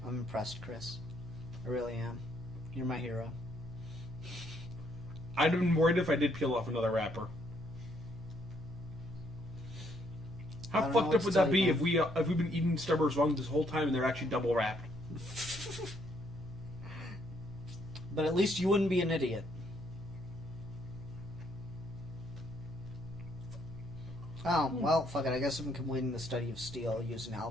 I'm impressed, Chris. I really am. You're my hero. I'd have been worried if I did peel off another wrapper. How fucked up would that be if we've been eating Starburst wrong this whole time and they're actually double wrapped? But at least you wouldn't be an idiot. Oh, well, fuck it. I guess I'm completing the study of steel using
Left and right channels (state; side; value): normal; both; correlation 0.70